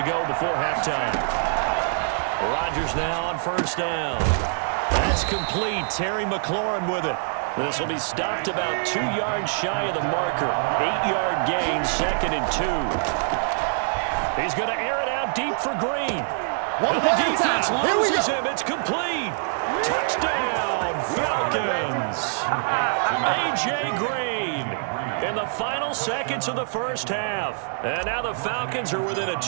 go before halftime. Rodgers now on 1st down. That's complete. Terry McLaurin with it. This will be stopped about 2 yards shy of the marker. 8-yard gain, 2nd and 2. He's going to air it out deep for Green. And the defense loses him. It's complete. Touchdown, Falcons. A.J. Green in the final seconds of the first half. And now the Falcons are within a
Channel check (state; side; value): silent; left; digital silence